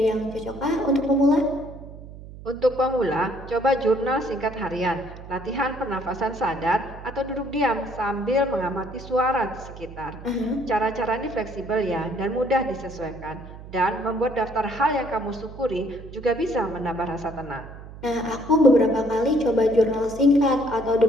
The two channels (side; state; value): right; noise; hum, 15 dB below the sound